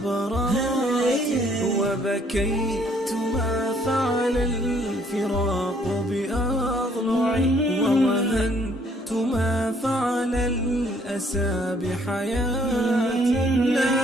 وبكيت ما فعل الفراق بأضلعي ووهنت ما فعل الأسى بحياتي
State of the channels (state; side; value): normal; both; correlation 0.64